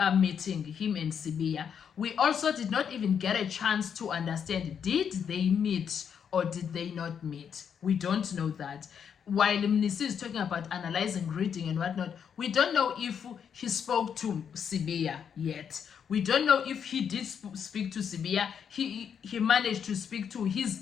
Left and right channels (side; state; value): right; quieter; 7.6 dB